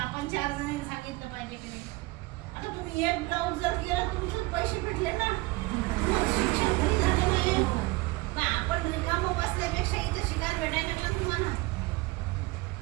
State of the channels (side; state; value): left; quieter; 22.1 dB